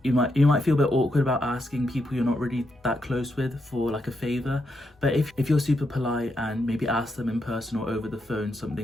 You might feel a bit awkward about asking people you're not really that close with for a favour, but if you're super polite and maybe ask them in person or over the phone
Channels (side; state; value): both; normal; correlation 0.82